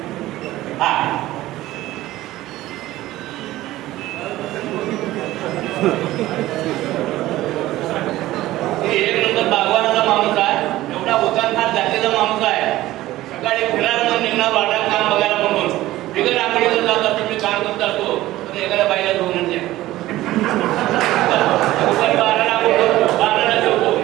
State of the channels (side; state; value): left; quieter; 16.1 dB